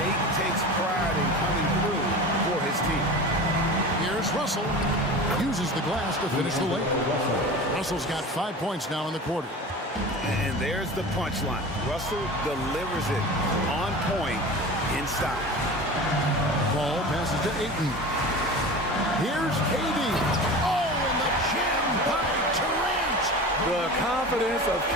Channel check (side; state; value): both; normal; correlation 0.33